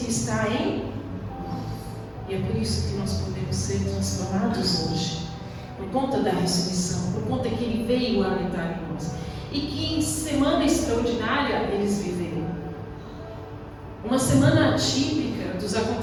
está em nós. E é por isso que nós podemos ser transformados hoje, por conta da ressurreição, por conta que Ele veio habitar em nós. E que semana extraordinária eles viveram. Uma semana atípica dos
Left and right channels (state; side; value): identical; both; correlation 1.00